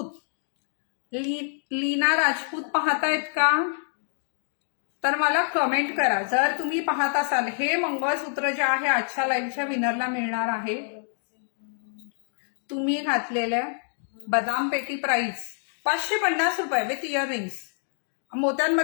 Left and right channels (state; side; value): silent; right; digital silence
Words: लीना राजपूत पाहतायत का? तर मला कमेंट करा जर तुम्ही पाहत असाल. हे मंगळसूत्र जे आहे आजच्या लाईव्हच्या विनरला मिळणार आहे. तुम्ही घातलेल्या बदाम पेटी प्राइस 550 रुपये विथ इयरिंग्स.